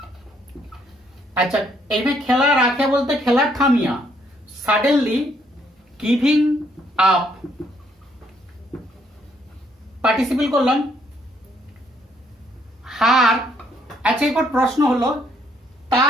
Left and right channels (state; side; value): normal; both; correlation 0.69